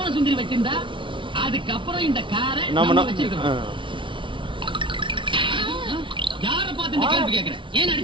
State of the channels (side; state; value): left; late; 0.24 ms